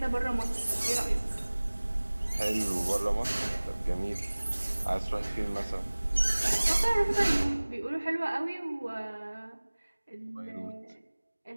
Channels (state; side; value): inverted; both; correlation -1.00